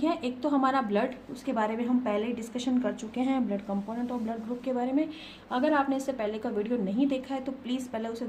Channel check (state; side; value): identical; both; correlation 1.00